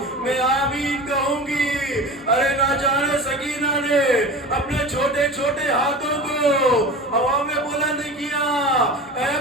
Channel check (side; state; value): both; normal; correlation 0.32